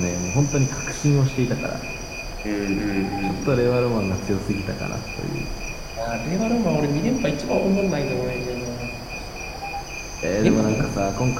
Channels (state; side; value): identical; both; correlation 1.00